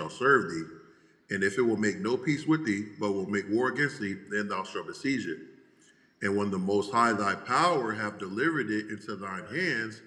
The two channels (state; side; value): identical; both; correlation 1.00